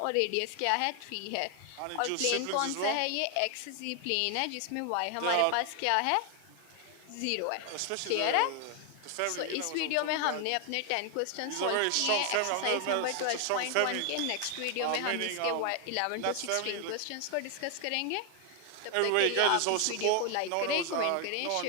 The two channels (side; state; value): both; different; correlation 0.00